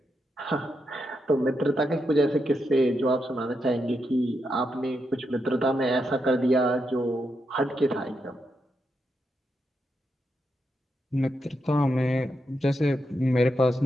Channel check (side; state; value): both; normal; correlation 0.84